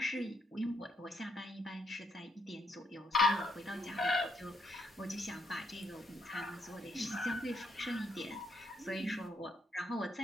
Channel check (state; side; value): normal; both; correlation 0.74